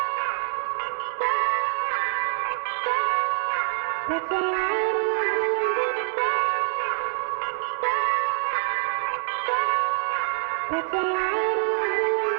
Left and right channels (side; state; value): left; silent; 61 dB below the other